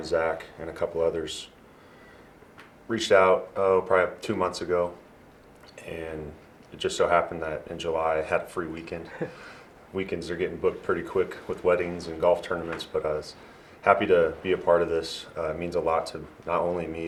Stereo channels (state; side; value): identical; both; correlation 1.00